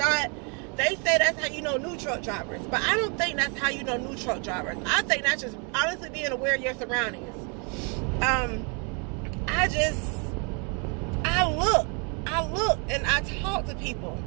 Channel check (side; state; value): left; quieter; 35.4 dB